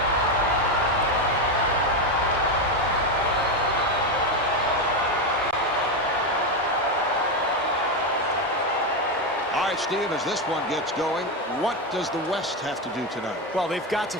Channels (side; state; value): both; normal; correlation 0.10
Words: All right, Steve, as this one gets going, what does the West have to do tonight? Well, they've got to